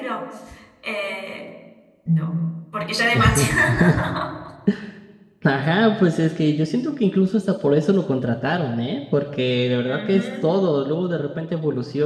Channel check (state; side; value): identical; both; correlation 1.00